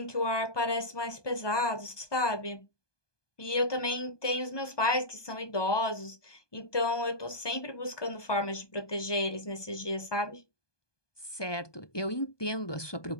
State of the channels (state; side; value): late; right; 1.2 ms